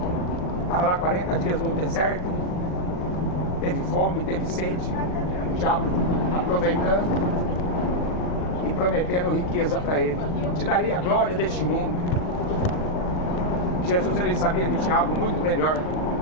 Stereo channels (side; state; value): right; late; 39 ms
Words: Estava lá 40 dias no deserto, teve fome, teve sede. O diabo aproveitando e prometendo riqueza para ele: eu te darei a glória deste mundo. Jesus, ele sabia que tinha algo muito melhor